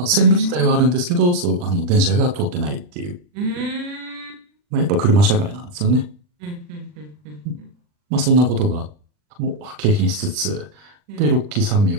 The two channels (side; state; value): left; late; 40 ms